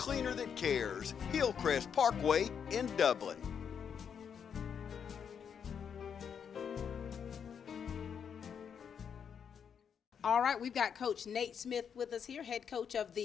that cares. Hillcrest Parkway in Dublin. All right, we've got Coach Nate Smith with us here, head coach of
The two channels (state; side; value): quieter; right; 7.4 dB